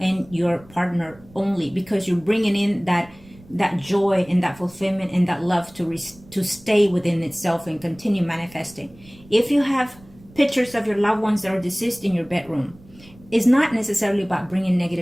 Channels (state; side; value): noise; right; rumble, 24 dB below the sound